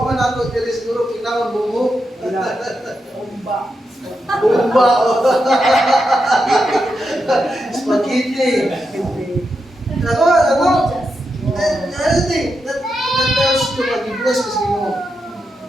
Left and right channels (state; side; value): normal; both; correlation 0.86